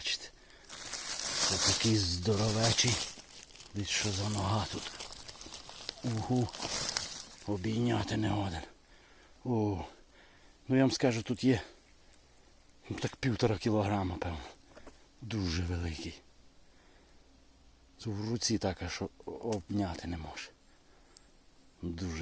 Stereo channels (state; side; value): identical; both; correlation 1.00